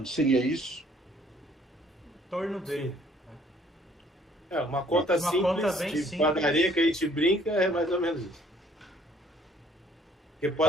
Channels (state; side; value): normal; both; correlation 0.61